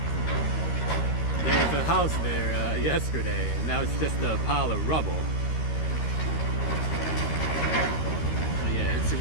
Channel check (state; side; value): late; right; 13 ms